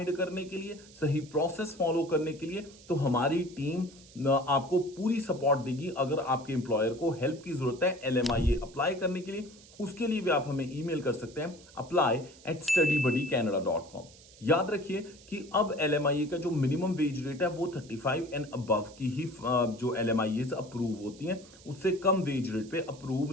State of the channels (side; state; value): right; noise; hiss, 22 dB below the sound